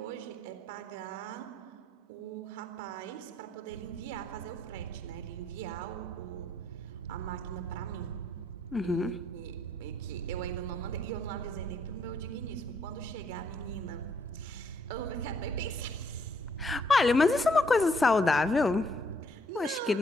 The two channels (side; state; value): both; normal; correlation 0.68